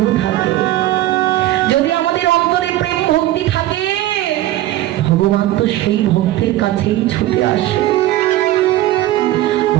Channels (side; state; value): left; quieter; 15.1 dB